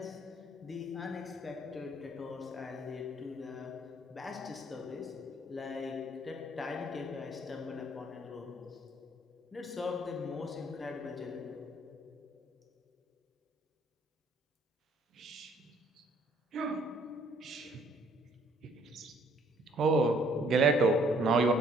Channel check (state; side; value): normal; both; correlation 0.62